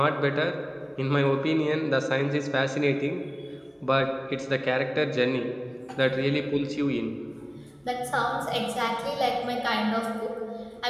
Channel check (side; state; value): both; identical; correlation 1.00